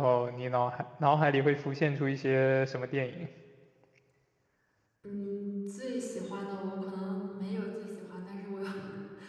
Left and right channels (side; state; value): both; identical; correlation 1.00